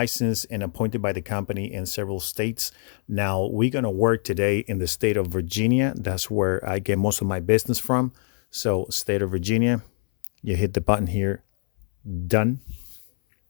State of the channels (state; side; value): silent; right; 59 dB below the other